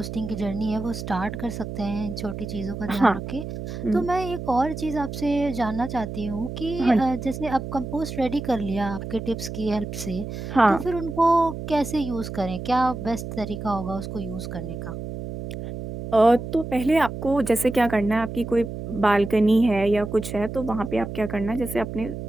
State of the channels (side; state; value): right; noise; hum, 7 dB below the sound